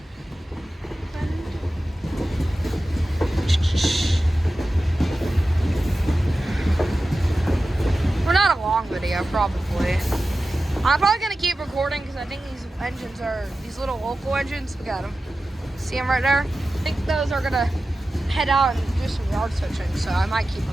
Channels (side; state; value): both; normal; correlation 0.94